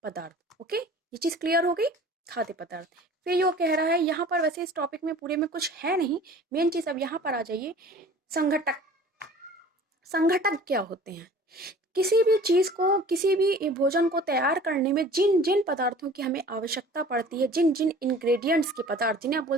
पदार्थ। ओके, ये चीज़ क्लियर हो गई। खाद्य पदार्थ। फिर यो कह रहा है यहाँ पर, वैसे इस टॉपिक में पूरे में कुछ है नहीं, मेन चीज़ अब यहाँ पर आ जाइए। संघटक। संघटक क्या होते हैं? किसी भी चीज़ को, किसी भी भोजन को तैयार करने में जिन जिन पदार्थों की हमें आवश्यकता पड़ती है, जिन जिन इंग्रेडिएंट्स के पदार्थ, जिन्हें आप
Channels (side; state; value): both; normal; correlation 0.46